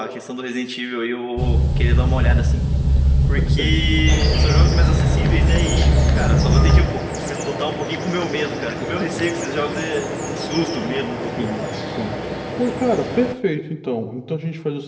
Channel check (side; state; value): both; identical; correlation 1.00